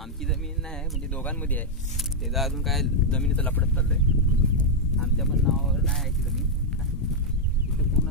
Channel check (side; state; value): both; normal; correlation -0.01